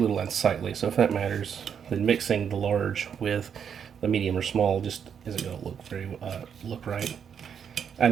unsightly. So if that matters, then mixing the large with the medium or small just isn't going to look right. I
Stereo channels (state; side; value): quieter; left; 7.7 dB